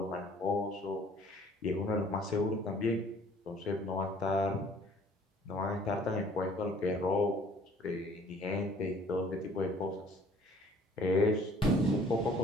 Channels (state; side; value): normal; both; correlation 0.55